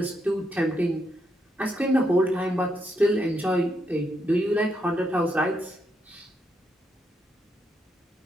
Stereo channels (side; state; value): both; normal; correlation 0.80